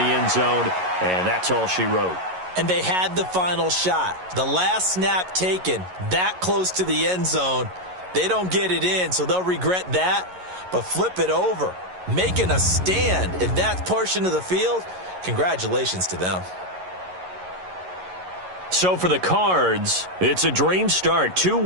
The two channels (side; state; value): left; late; 11 ms